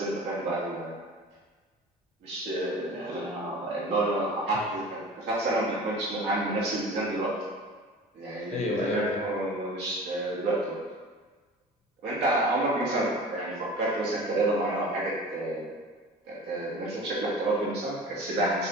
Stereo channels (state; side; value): normal; both; correlation 0.39